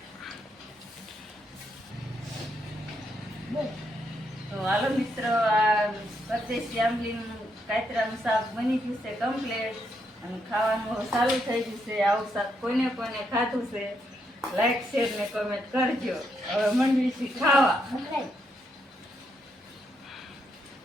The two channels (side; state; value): both; normal; correlation 0.78